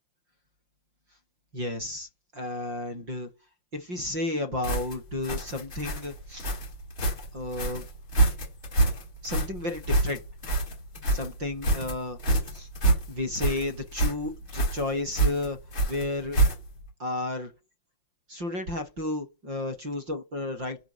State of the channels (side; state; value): left; late; 5.7 ms